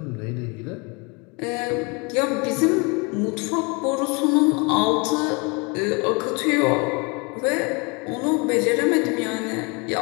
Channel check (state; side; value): quieter; right; 30.3 dB